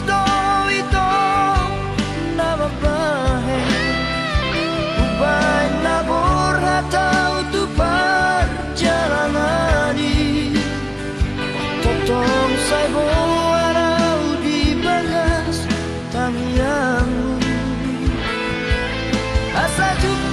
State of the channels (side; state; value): both; identical; correlation 1.00